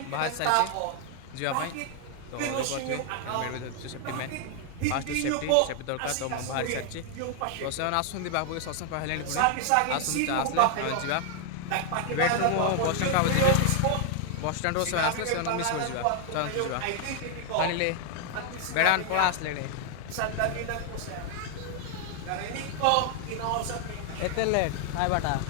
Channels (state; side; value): different; both; correlation 0.00